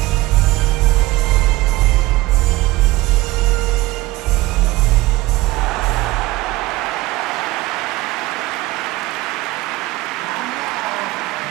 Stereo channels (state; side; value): quieter; left; 19.4 dB